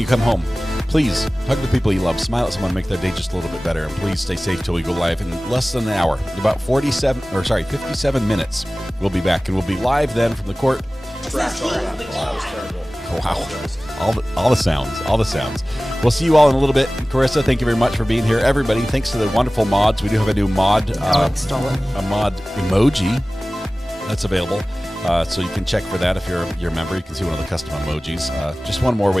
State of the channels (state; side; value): normal; both; correlation 0.98